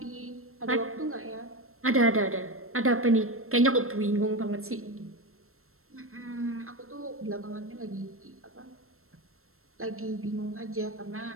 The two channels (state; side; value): late; left; 0.62 ms